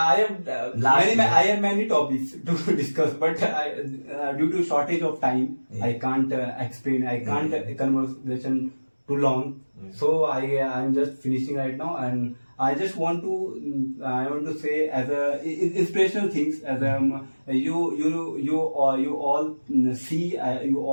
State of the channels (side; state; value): both; inverted; correlation -1.00